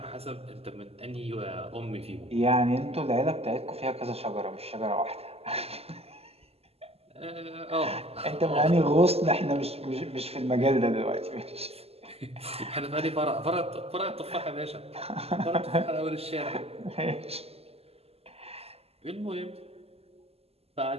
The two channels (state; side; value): late; left; 0.29 ms